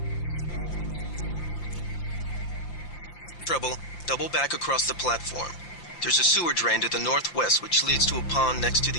Trouble, double back across the platform. There's a sewer drain to the northwest which leads to a pond next to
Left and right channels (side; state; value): right; late; 5.8 ms